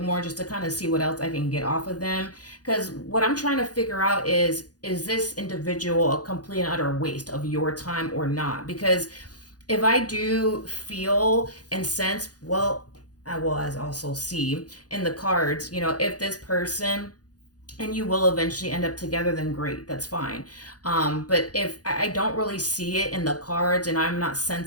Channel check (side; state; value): right; late; 0.68 ms